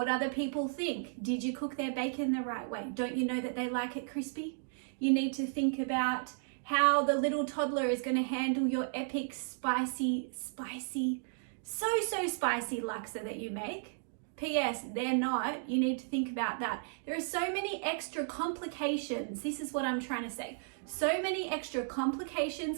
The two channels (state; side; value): silent; left; digital silence